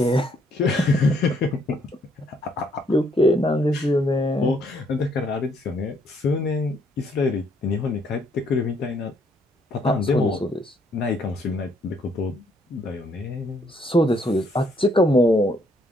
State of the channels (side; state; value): both; normal; correlation 0.69